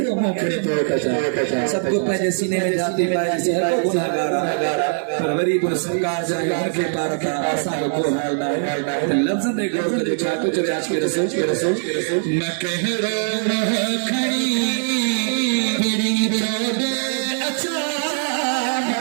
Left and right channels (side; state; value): left; silent; 62 dB below the other